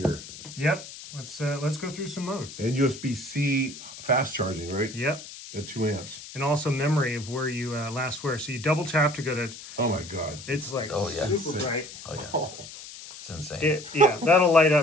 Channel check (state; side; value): noise; left; hiss, 14 dB below the sound